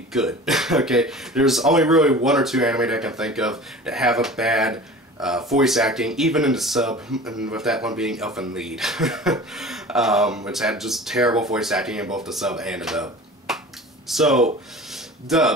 good. Okay, there's only really one or two anime that I can think of that have a bad voice acting, even in the sub, and with that one being Elfen Lied, which had just terrible voice acting in both the sub and the dub. So,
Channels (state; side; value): normal; both; correlation 0.38